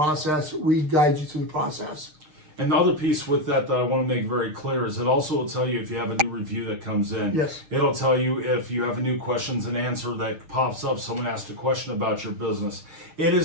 We guide you through the process. And the other piece with that I want to make very clear is it also will tell you if you have a new review that comes in. Yes. It'll tell you if you have a new questions and answer that pops up, someone asked a question about your business. It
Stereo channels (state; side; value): late; left; 6.5 ms